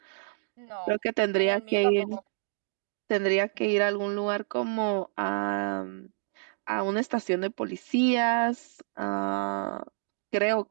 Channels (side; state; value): left; silent; digital silence